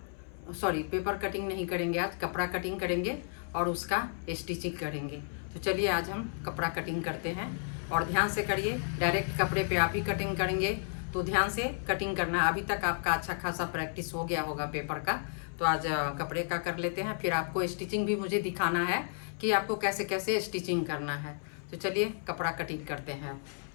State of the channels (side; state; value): right; silent; 56 dB below the other